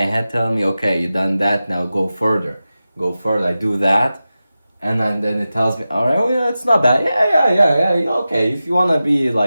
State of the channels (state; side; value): inverted; both; correlation -0.94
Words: head telling me, okay, you done that, now go further. Go further. I do that, and then it tells me, all right, oh yeah, it's not bad. Yeah. Okay, if you want to be